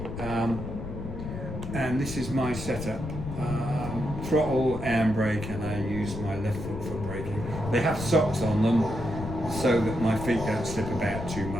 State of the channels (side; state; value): left; noise; rumble, 7 dB below the sound